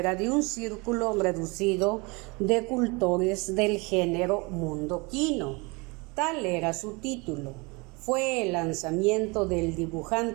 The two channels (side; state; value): left; quieter; 27.6 dB